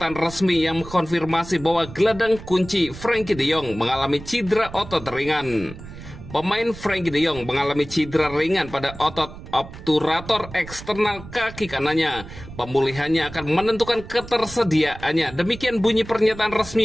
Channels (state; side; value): noise; right; rumble, 14 dB below the sound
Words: resmi yang mengkonfirmasi bahwa gelandang kunci Frenkie de Jong mengalami cedera otot ringan. Pemain Frenkie de Jong mengalami cedera ringan pada otot obturator eksternal kaki kanannya. Pemulihannya akan menentukan ketersediaannya. Demikian bunyi pernyataan